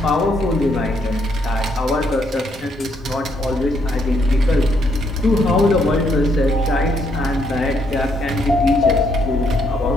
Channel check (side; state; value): both; normal; correlation 0.73